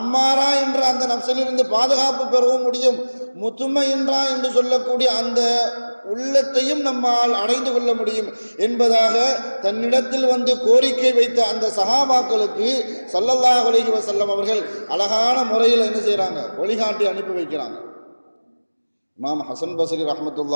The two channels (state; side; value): inverted; both; correlation -1.00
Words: என்ற அந்த நப்சிலிருந்து பாதுகாப்பு பெறவும் முடியும். முத்துமையின்றா என்று சொல்லக்கூடிய அந்த உள்ளத்தையும் நம்மால் அடைந்து கொள்ள முடியும் என்பதாக தன்னிடத்தில் வந்து கோரிக்கை வைத்த அந்த சஹாபாக்களுக்கு ஸல்லல்லாஹு அலைஹி வஸல்லம் அவர்கள் அழகான முறையில் என்ன செய்கிறாங்க, வழிகாட்டி அனுப்பி வைக்கிறாங்க. இமாம் ஹசன் பஸ்ரி